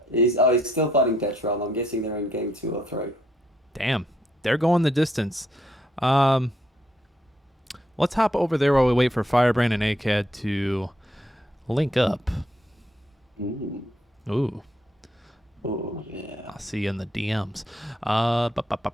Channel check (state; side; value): normal; both; correlation 0.73